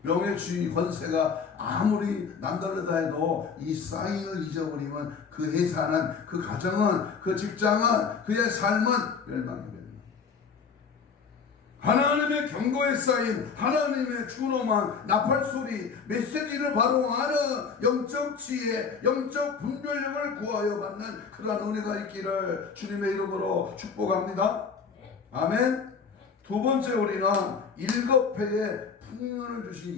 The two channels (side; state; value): right; quieter; 5.8 dB